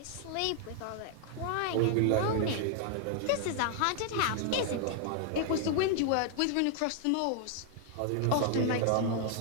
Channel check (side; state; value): both; different; correlation 0.00